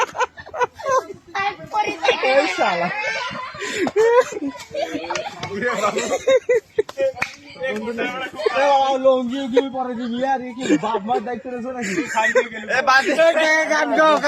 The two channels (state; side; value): identical; both; correlation 1.00